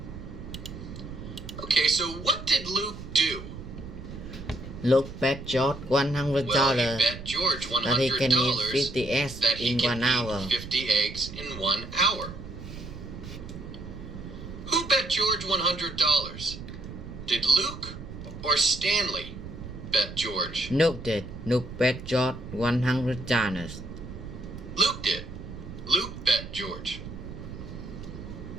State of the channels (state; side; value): noise; right; rumble, 11 dB below the sound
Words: Okay, so what did Luke do? Luke bet George Well, he $100 bet George that he can eat $100 50 eggs that he in can 1 hour. eat 50 eggs in 1 hour. Who bet George $100? Did Luke or Stanley bet George? Luke did. Luke bet George $100. Luke did. Luke bet George.